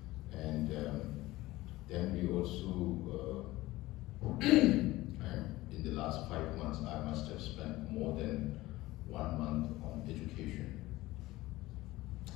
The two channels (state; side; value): quieter; right; 18.2 dB